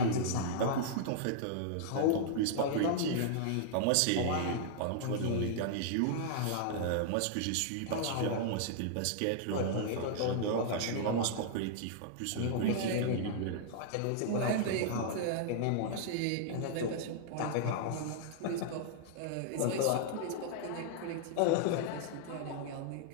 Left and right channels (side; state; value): both; different; correlation -0.01